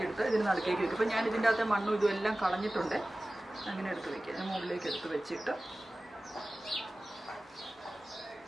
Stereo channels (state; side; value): normal; both; correlation 0.97